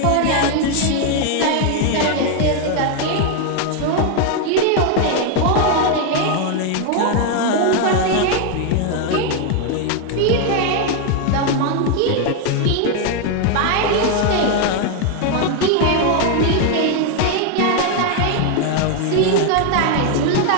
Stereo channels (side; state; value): both; different; correlation 0.01